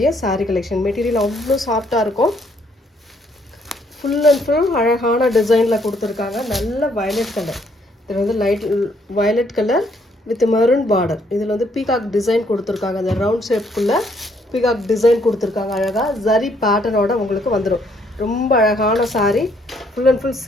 சாரீ கலெக்ஷன். மெட்டீரியல் அவ்வளோ சாஃப்டாக இருக்கும். ஃபுல் அண்ட் ஃபுல் அழகான டிசைனில் கொடுத்துருக்காங்க. நல்ல வயலட் கலர். இதில் வந்து light violet colour with maroon border. இதில் வந்து பீகாக் டிசைன் கொடுத்துருக்காங்க. அந்த ரவுண்ட் ஷேப்புக்குள்ளே பீகாக் டிசைன் கொடுத்துருக்காங்க. அழகாக ஜரி பேட்டர்னோட உங்களுக்கு வந்துடும். ரொம்ப அழகான sari. Full and full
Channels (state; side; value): normal; both; correlation 0.68